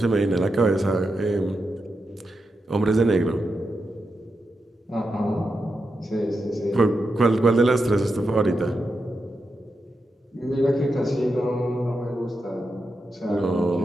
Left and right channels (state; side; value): normal; both; correlation 0.87